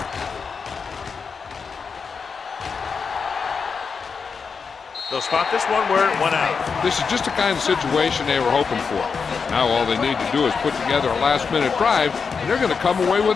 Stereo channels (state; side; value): quieter; right; 5.5 dB